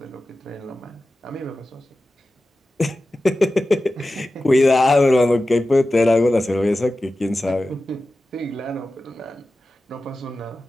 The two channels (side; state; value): both; normal; correlation 0.94